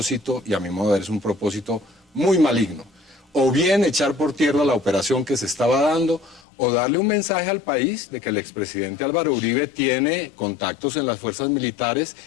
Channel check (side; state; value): right; drops out; at 6.4 s